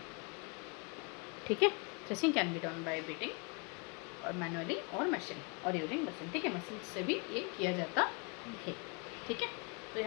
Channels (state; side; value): quieter; right; 32.7 dB